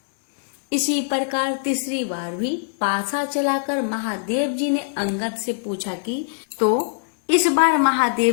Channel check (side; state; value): right; silent; digital silence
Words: इसी प्रकार तीसरी बार भी पासा चलाकर महादेव जी ने अंगद से पूछा कि तो इस बार